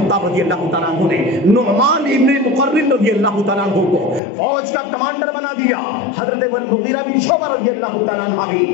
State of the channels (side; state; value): right; drops out; at 4.2 s